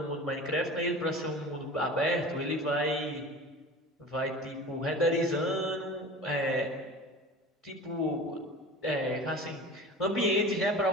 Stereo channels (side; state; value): both; normal; correlation 0.37